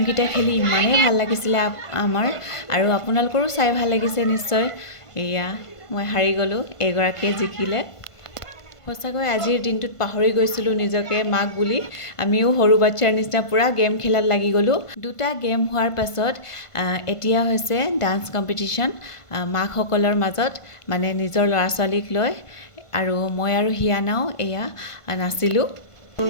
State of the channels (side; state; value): right; late; 1.5 ms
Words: খেলি ইমানেই ভাল লাগিছিলে আমাৰ, আৰু আপোনালোকৰো চাই ভাল লাগিছে নিশ্চয়। এয়া মই হাৰি গ'লোঁ, এগৰাকীয়ে জিকিলে। সঁচাকৈ আজিৰ দিনটোত পাহৰি গৈছিলোঁ নিজকে মাক বুলি। আমিও সৰু বাচ্ছাৰ নিচিনা পূৰা গেম খেলাত লাগি গ'লোঁ। দুটা গেম হোৱাৰ পাছত এতিয়া হৈছে ডান্স কম্পিটিশ্যন মাকসকলৰ মাজত, মানে নিজৰ ল'ৰা ছোৱালীক লৈ। আৰু মই আৰু হিয়ানাও এয়া নাচিলোঁ।